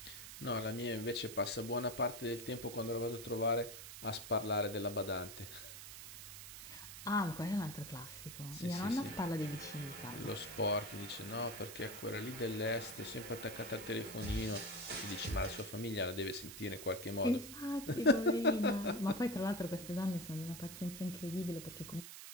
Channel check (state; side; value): noise; right; hiss, 11 dB below the sound